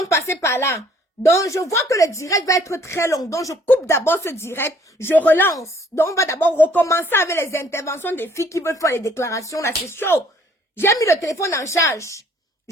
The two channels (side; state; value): both; normal; correlation 0.60